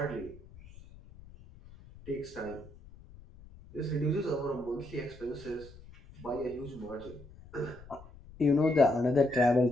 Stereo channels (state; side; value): noise; left; rumble, 20 dB below the sound